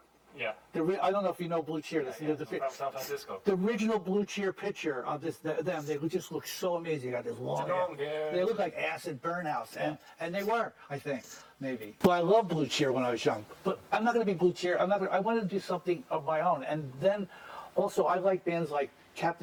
Yeah. I don't know if you know Blue Cheer. From San Francisco. The original Blue Cheer picture of them, they just look so amazing. They got this long hair. They look like acid burnouts, and they were, I think, maybe. Well, I loved Blue Cheer when I was young, but I'm not going to be Blue Cheer. I wanted to do something of my own, and then also I like bands like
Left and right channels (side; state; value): both; identical; correlation 1.00